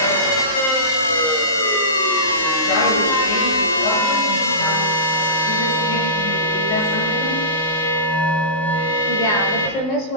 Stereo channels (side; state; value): right; late; 19 ms